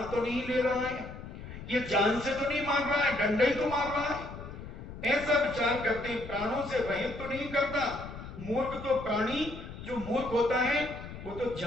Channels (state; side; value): noise; left; rumble, 11 dB below the sound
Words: तो नहीं ले रहा है, ये जान से तो नहीं मार रहा है, डंडा ही तो मार रहा है। ऐसा विचार करते हैं, प्राणों से रहित तो नहीं करता। मूर्ख तो प्राणी जो मूर्ख होता है वो तो